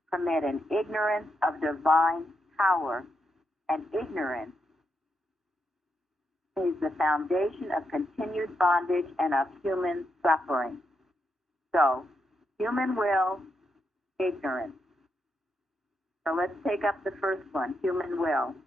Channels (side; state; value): both; normal; correlation 0.82